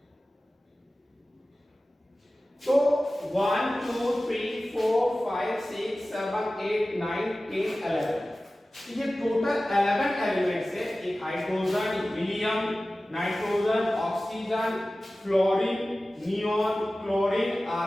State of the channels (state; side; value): normal; both; correlation 0.96